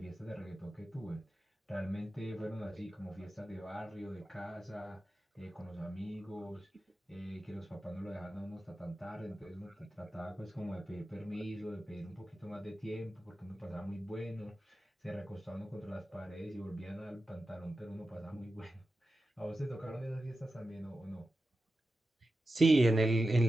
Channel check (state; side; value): normal; both; correlation 0.92